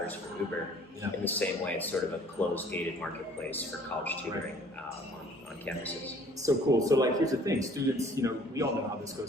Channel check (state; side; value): normal; both; correlation 0.55